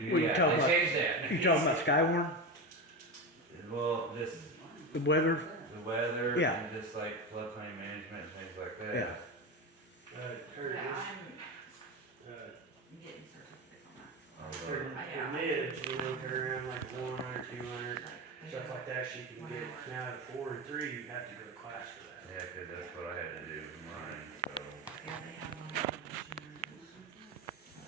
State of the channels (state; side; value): normal; both; correlation 0.19